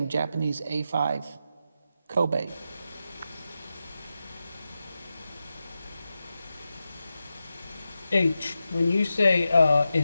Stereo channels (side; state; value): both; inverted; correlation -0.90